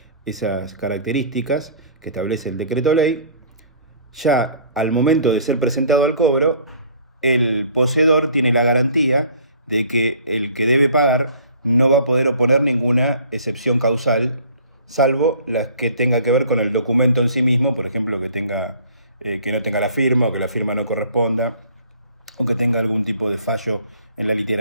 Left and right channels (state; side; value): inverted; both; correlation -0.52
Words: esas características que establece el decreto ley, ya al momento de ser presentado al cobro, el poseedor tiene la garantía de que el que debe pagar no va a poder oponer ninguna excepción causal, salvo las que tenga que ver con el documento en sí mismo, por ejemplo, que no tenga la firma o que la firma no corresponda o que tenga algún tipo de fallo en la